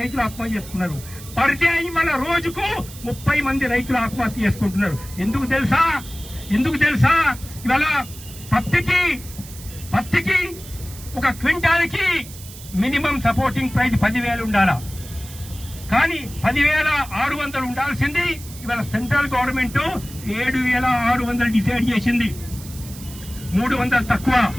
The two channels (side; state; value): right; noise; hiss, 16 dB below the sound